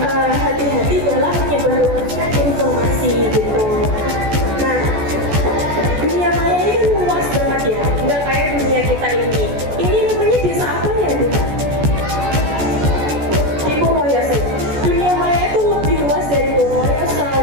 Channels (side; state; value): left; late; 14 ms